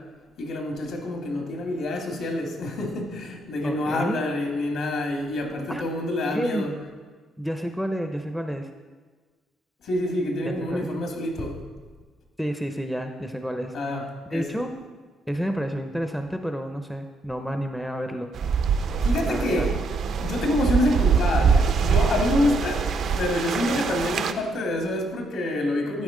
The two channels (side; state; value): both; normal; correlation 0.75